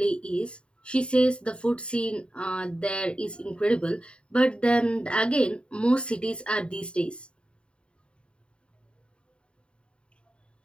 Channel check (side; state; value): right; late; 0.054 ms